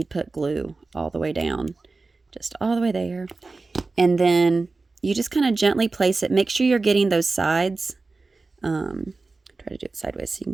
put glue all the way down, just all the way there. And then you just kind of gently place it. Make sure you're getting those sides. Try to do it sideways so you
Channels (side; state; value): left; quieter; 3.7 dB